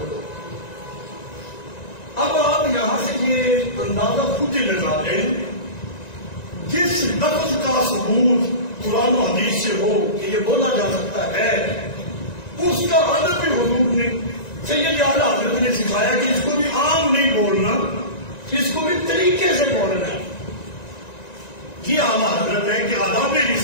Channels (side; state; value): right; late; 1.9 ms